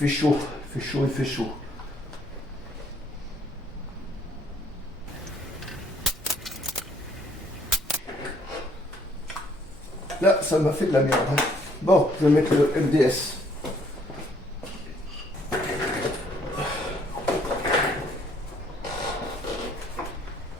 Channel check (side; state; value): both; normal; correlation 0.64